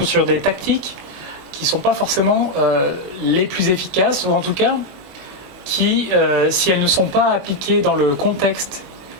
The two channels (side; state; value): left; late; 22 ms